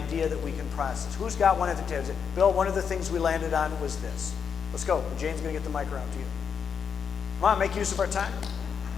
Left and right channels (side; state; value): right; quieter; 6.9 dB